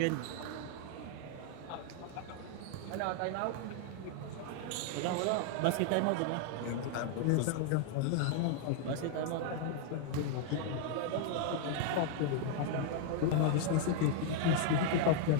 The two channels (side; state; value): both; different; correlation 0.00